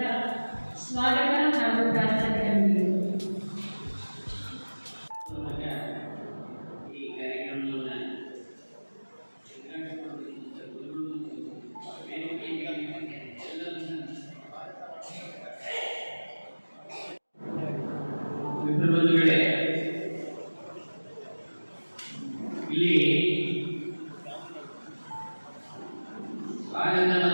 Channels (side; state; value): both; inverted; correlation -1.00